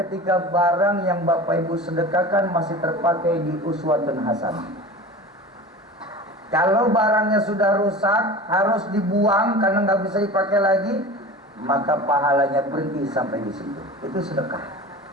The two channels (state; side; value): normal; both; correlation 0.35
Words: barang yang Bapak Ibu sedekahkan masih terpakai di uswatun hasanah. Kalau barangnya sudah rusak, harus dibuang karena nggak bisa dipakai lagi, maka pahalanya berhenti sampai di situ. Itu sedekah.